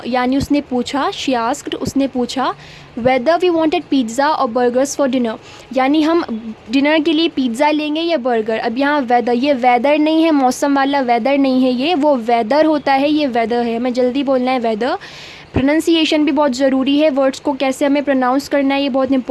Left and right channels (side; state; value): both; identical; correlation 1.00